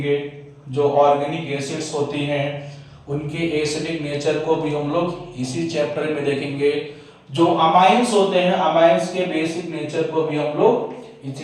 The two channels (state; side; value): identical; both; correlation 1.00